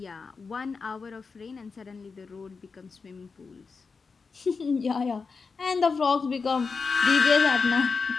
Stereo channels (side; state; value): right; quieter; 4.8 dB